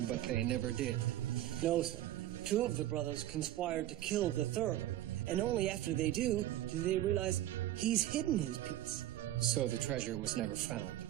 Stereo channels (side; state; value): left; quieter; 13.8 dB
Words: But they never did. No, sir. 2 of the brothers conspired to kill the 3rd, and only after they do they realize he's hidden his piece. So the treasure was never found.